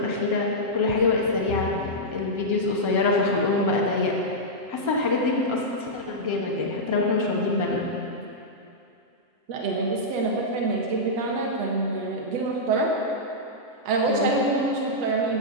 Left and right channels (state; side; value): late; left; 7.7 ms